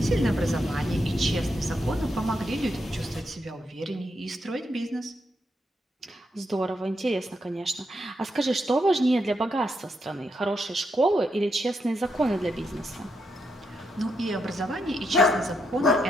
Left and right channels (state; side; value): normal; both; correlation 0.81